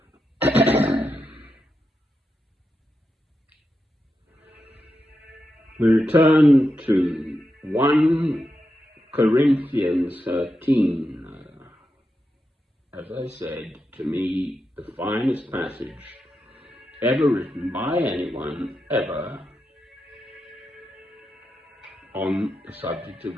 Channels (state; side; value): normal; both; correlation 0.87